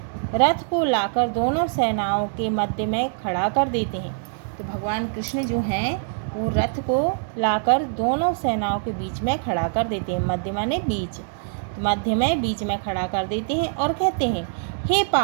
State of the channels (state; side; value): silent; left; 63 dB below the other